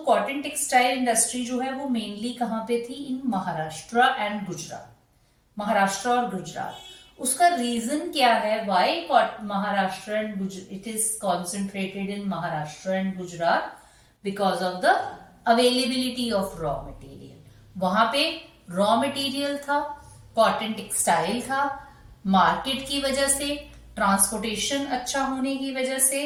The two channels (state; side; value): identical; both; correlation 1.00